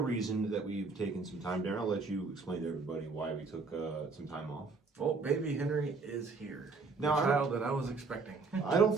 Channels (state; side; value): quieter; left; 4.2 dB